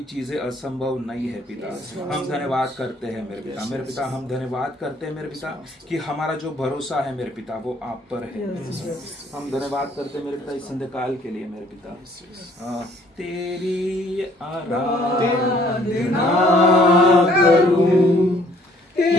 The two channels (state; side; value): normal; both; correlation 0.61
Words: चीजें असंभव नहीं है पिता। हम धन्यवाद करते हैं मेरे पिता। हम धन्यवाद करते हैं मेरे पिता कि हमारा जो भरोसा है मेरे पिता वो आप पर है। हम धन्यवाद करते हैं मेरे पिता इस संध्या काल के लिए मेरे पिता। तेरी आराधना करूं,